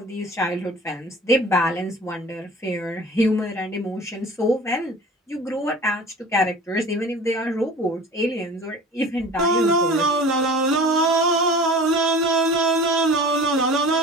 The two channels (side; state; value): both; normal; correlation 0.41